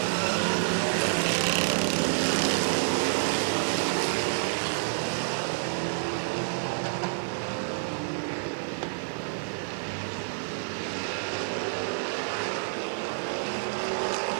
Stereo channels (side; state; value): left; silent; digital silence